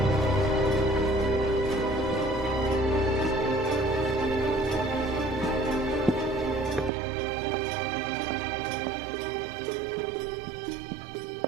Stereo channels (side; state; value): left; drops out; at 6.9 s